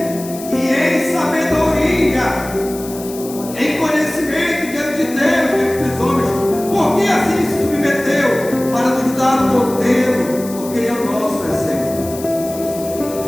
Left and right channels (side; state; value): left; noise; hiss, 14 dB below the sound